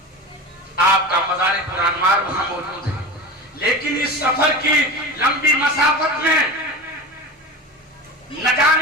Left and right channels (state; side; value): normal; both; correlation 0.28